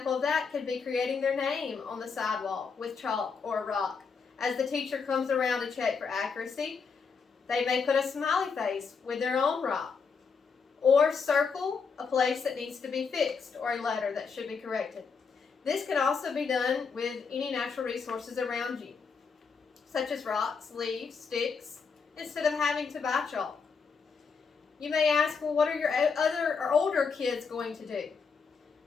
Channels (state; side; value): quieter; right; 5.4 dB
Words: of that could be creating their name on the sidewalk with chalk or a rock. As the teacher comes around to check for accuracy, they may put a smiley face with their own rock, or circle a place that needs to be fixed or a letter that should be corrected. This can also be done with any natural resources around you, such as rocks, leaves, sticks, instead of having to buy chalk. You may ask, well, what are your other or older kids going to do?